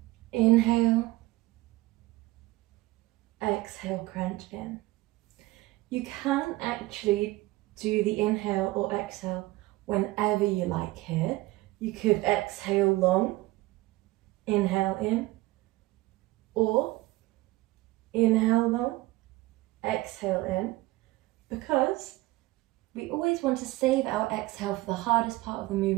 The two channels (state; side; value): quieter; left; 19.3 dB